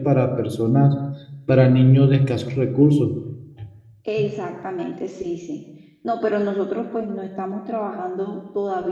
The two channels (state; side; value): identical; both; correlation 1.00